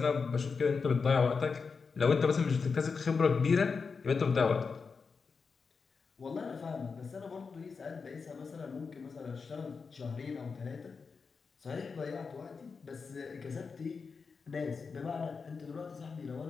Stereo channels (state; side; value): quieter; right; 5.1 dB